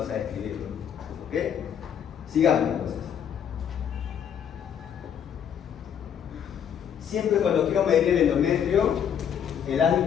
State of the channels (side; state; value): right; quieter; 8.5 dB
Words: a escribirlo, ¿ok? Sigamos entonces. Siempre cuando quiero medir el endometrio, el